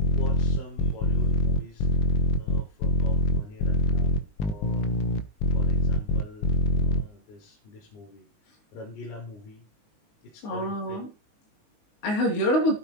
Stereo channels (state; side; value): late; right; 19 ms